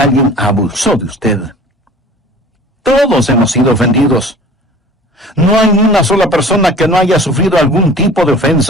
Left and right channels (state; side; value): normal; both; correlation 0.45